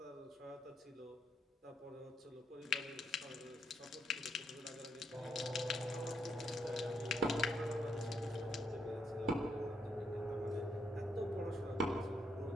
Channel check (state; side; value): normal; both; correlation 0.76